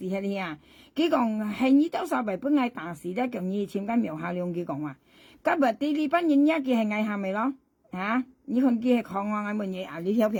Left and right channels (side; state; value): both; identical; correlation 1.00